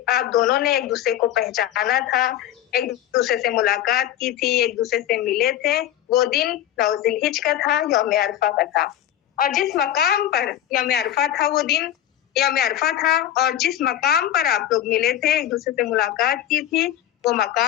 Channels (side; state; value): right; quieter; 11.8 dB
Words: दोनों ने एक दूसरे को पहचाना था, एक दूसरे से मुलाकात की थी, एक दूसरे से मिले थे, वो दिन 9 ज़िलहिज का था, यौम अरफा का था। और जिस मकाम पर यौम अरफा था, वो दिन यौम अरफा था, और जिस मकाम पर आप लोग मिले थे, एक दूसरे से मुलाकात की थी, वो